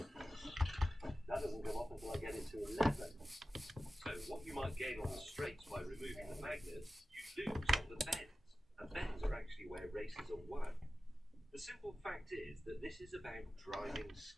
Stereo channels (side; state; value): both; normal; correlation 0.94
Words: That doesn't come off until I get it to 11. So what you might gain on the straights by removing the magnets, you lose on the bends. And bends are actually where races are won. The simple fact is that this is about driving